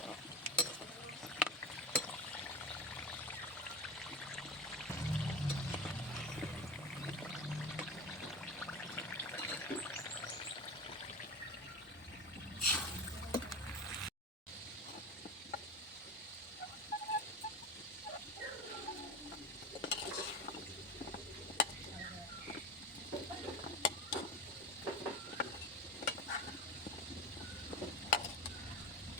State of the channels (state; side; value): normal; both; correlation 0.27